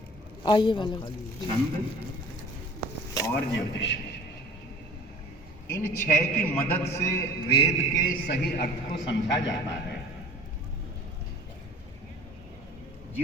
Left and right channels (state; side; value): normal; both; correlation 0.44